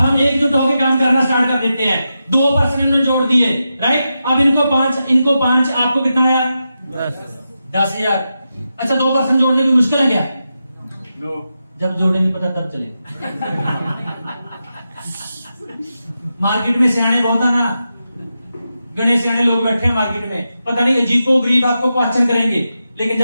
एकजुट होकर काम करना स्टार्ट कर देते हैं। 2% इन्होंने जोड़ दिए, राइट। अब इनको 5, आपको कितना आया? 10,000। अच्छा, 2% जोड़ने में मुश्किल है क्या? जब जोड़े नहीं पता तब चले। मार्केट में सियाने बहुत है ना, गणेश सियाने लोग बैठे हैं मार्केट में, पता नहीं अजीबो गरीब आपको क्वेश्चन करेंगे, लेकिन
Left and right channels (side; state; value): both; inverted; correlation -0.89